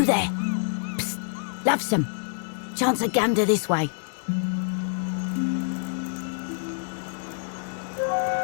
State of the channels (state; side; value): silent; right; digital silence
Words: there? Psst, lovesome. Chance a gander this way.